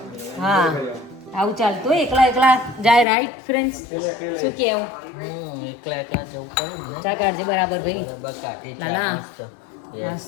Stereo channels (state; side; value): drops out; right; at 3.1 s